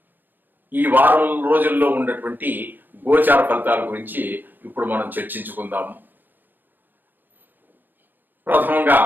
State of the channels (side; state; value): left; late; 0.089 ms